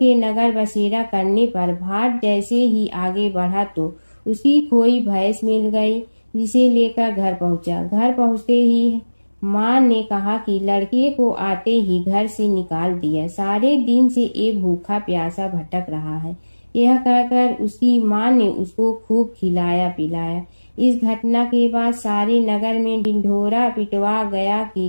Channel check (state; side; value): inverted; both; correlation -1.00